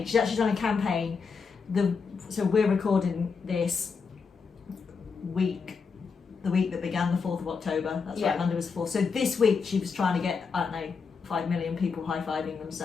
she's actually done a campaign. So we're recording this the week that began the 4th of October. That's right, Monday was the 4th. So this week she was trying to get, I don't know, 5 million people high-fiving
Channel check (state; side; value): quieter; right; 5.3 dB